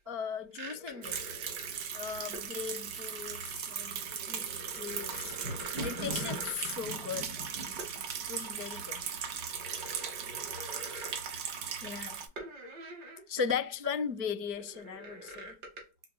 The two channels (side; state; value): left; late; 5.1 ms